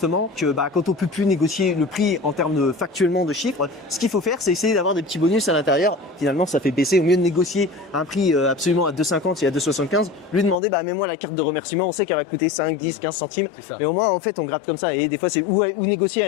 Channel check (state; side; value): drops out; right; at 10.6 s